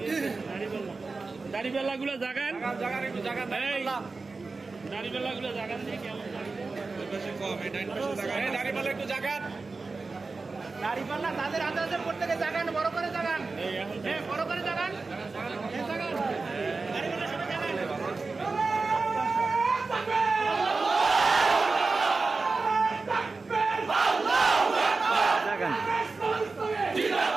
দাড়িপাল্লাগুলো জাগান এই দাড়িপাল্লাগুলো জাগান দিয়ে কেমন দাড়িপাল্লা একটু জাগান দাড়িপাল্লা তাদের হাতে হাতে প্রত্যেকে জাগান বড় করে জাগান বড় করে জাগান দাড়িপাল্লা সবাই জাগান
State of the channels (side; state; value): left; quieter; 4.0 dB